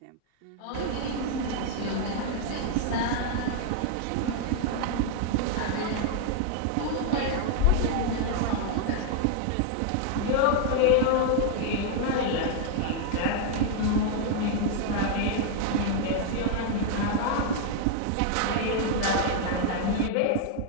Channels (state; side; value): different; both; correlation 0.00